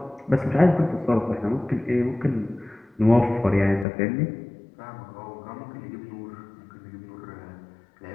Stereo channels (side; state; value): right; drops out; at 3.9 s